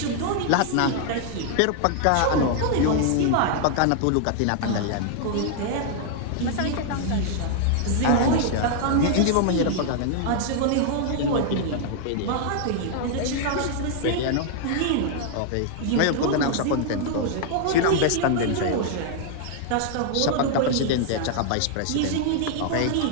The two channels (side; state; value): both; different; correlation 0.00